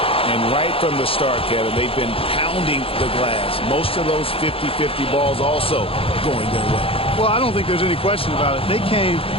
And right from the start, Kevin, they've been pounding the glass. Most of those 50-50 balls also going their way. Well, I don't think there's any question about it. They came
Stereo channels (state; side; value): late; right; 0.27 ms